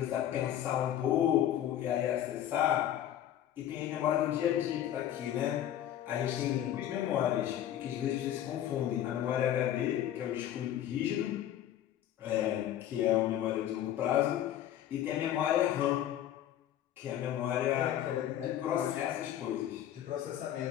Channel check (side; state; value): right; quieter; 11.5 dB